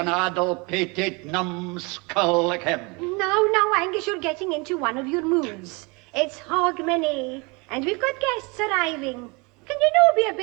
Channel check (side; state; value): left; quieter; 28.6 dB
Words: addle-pated numbskull like him. Now, Angus, you're getting into one of your moods. It's Hogmanay, and we've got guests arriving. Can you be a